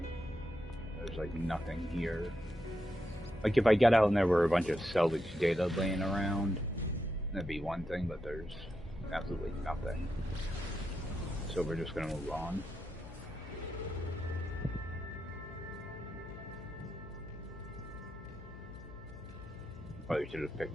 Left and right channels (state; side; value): noise; left; hum, 16 dB below the sound